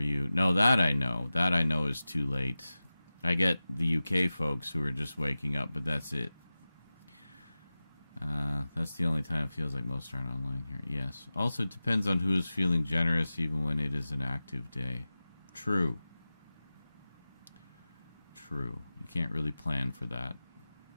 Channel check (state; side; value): inverted; both; correlation -0.96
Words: No, that I know. That I know is too late. I get the UK folks who are just waking up, but that's it. That's the only time it feels like most aren't online here. Yes. Also, it depends on who is feeling generous, even when it is an active day. True. True. You can't really plan for that.